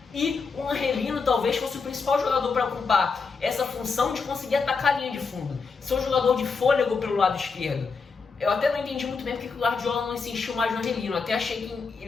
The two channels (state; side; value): quieter; right; 4.9 dB